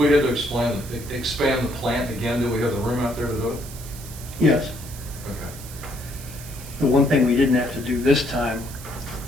had to expand the plant again, do we have the room out there to do it? Yes. Okay. The one thing we didn't have to do this time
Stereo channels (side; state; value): right; noise; hiss, 15 dB below the sound